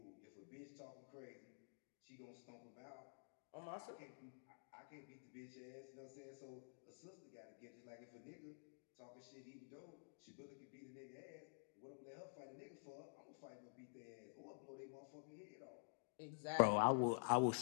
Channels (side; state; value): right; silent; digital silence